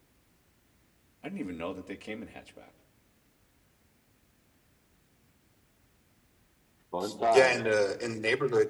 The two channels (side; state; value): both; identical; correlation 1.00